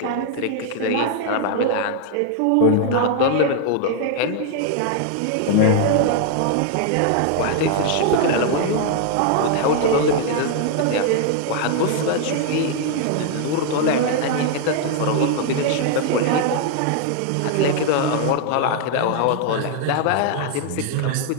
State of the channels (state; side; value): different; both; correlation 0.00